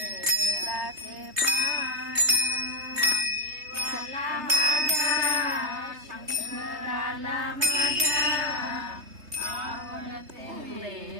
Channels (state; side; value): late; left; 3.2 ms